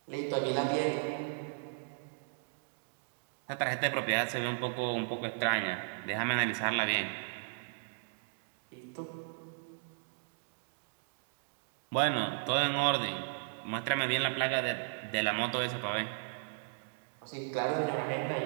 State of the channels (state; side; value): silent; left; digital silence